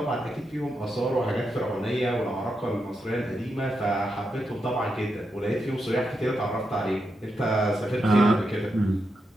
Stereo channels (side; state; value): both; normal; correlation 0.85